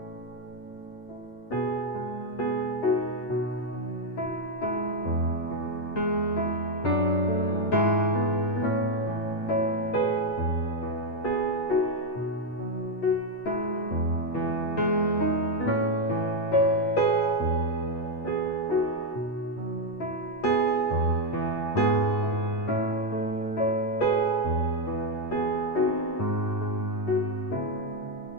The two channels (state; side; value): late; right; 8.6 ms